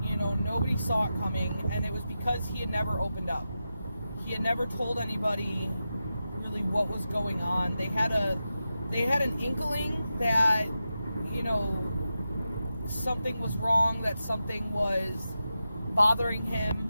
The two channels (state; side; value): inverted; both; correlation -0.90